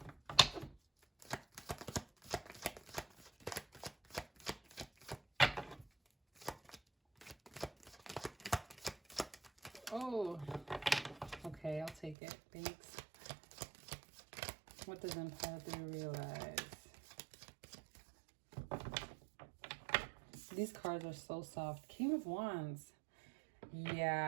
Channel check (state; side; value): drops out; left; at 12.2 s